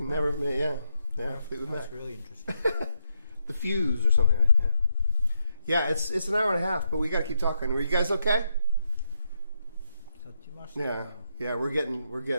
Never, Mac. yeah, Fleetwood Mac. That's really interesting. The Fuse or something, right? Yeah, it's an hour and a half, but we gotta keep talking. Were you guys okay? Yeah, we're getting.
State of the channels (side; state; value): both; inverted; correlation -0.81